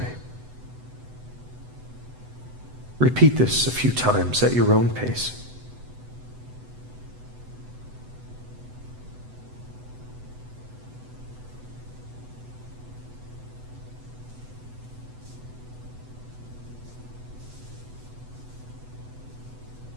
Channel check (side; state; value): left; late; 8.0 ms